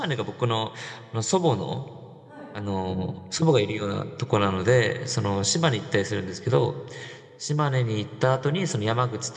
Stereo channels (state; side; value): identical; both; correlation 1.00